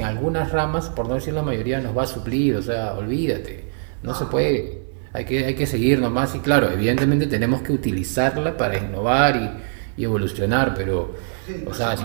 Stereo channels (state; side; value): silent; left; digital silence